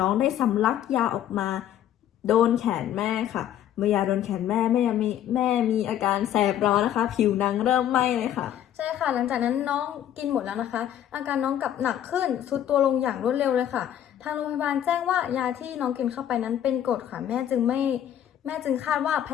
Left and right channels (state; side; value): quieter; right; 10.9 dB